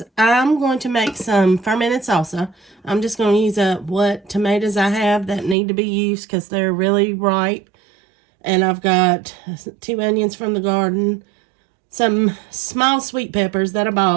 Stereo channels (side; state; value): left; drops out; at 5.6 s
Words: I'm going to make some fermented salsa. I'm just going to use up what tomatoes I have that need to be used because they're really ripe. And I've got 2 onions from the garden, some small sweet peppers that I